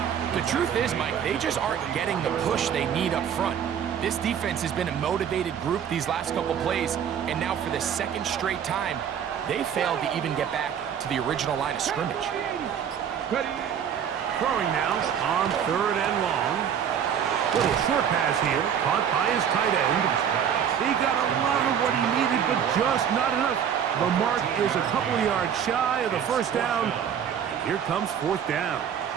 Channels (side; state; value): left; quieter; 8.5 dB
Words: The truth is, Mike, they just aren't getting the push they need up front. This defense has been a motivated group these last couple plays, and now for the 2nd straight time, they failed to even get back to the original line of scrimmage. Throwing now on 3rd and long. Little short pass here, caught by his tight end. He got a lot of what he needed, but just not enough. The mark is a couple of yards shy of the 1st down. Here comes 4th down.